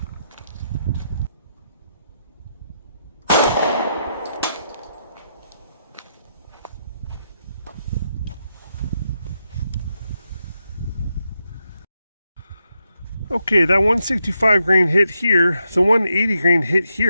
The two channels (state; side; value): inverted; both; correlation -0.82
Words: Okay, that 165 grain hit here, the 180 grain hit